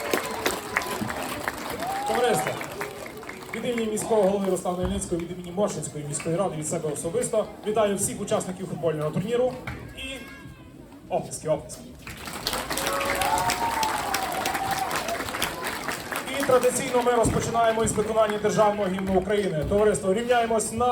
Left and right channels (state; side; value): identical; both; correlation 1.00